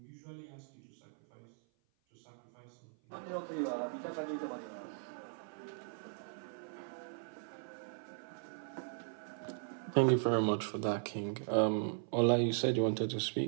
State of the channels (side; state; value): left; silent; 52 dB below the other